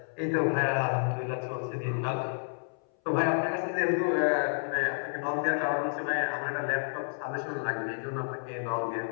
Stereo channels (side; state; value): right; silent; 58 dB below the other